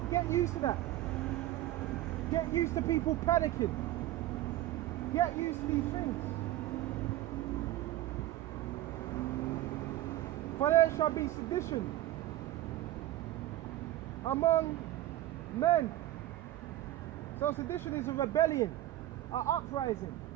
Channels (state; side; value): quieter; left; 14.5 dB